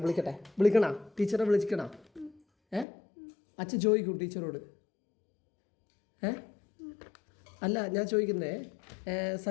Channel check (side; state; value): right; drops out; at 2.9 s